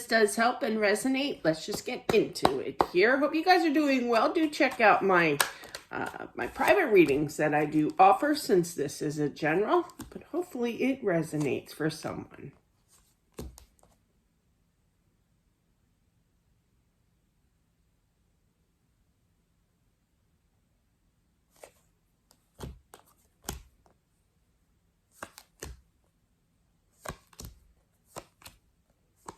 does help and resonate. Let's just get into it here. Hope you guys are doing well. Do check out my private readings that I do offer, since this is a general, but hopefully it resonates for someone.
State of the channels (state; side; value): identical; both; correlation 1.00